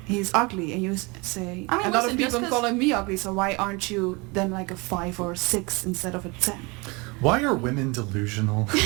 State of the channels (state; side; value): quieter; left; 27.2 dB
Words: he's ugly, and you say I mean, a lot listen, of just people 'cause- calling me ugly, so why aren't you then like a 5 or 6 instead of a 10? Why are women delusional?